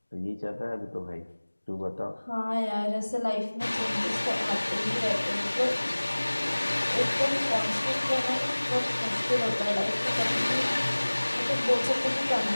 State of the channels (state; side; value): inverted; both; correlation -1.00